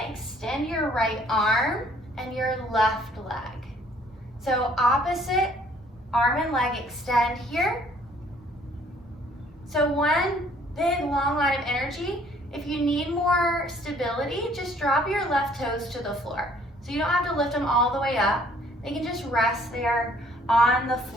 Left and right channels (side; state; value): both; normal; correlation 0.60